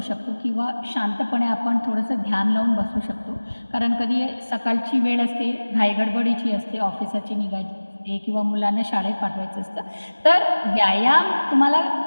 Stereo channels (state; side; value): inverted; both; correlation -1.00